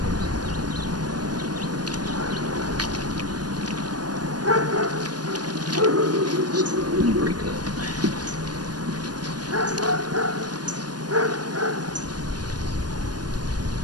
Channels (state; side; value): late; left; 0.69 ms